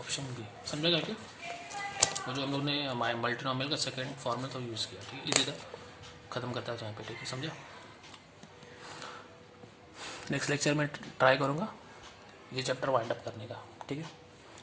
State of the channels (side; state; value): both; identical; correlation 1.00